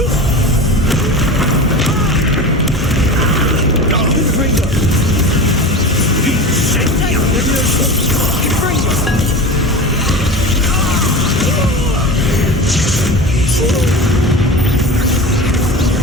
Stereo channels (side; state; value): both; normal; correlation 0.30